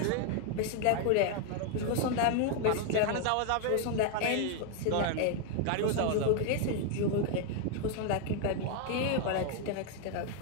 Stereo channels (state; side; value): different; both; correlation 0.00